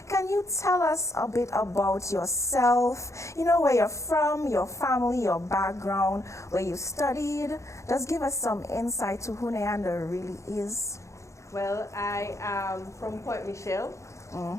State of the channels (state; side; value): late; right; 0.15 ms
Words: Can you tell us a bit about yourself? Where you're from, your family, your background, where you studied. Just give us some insight to who Nyanda really is. Well, I am from Point Michelle,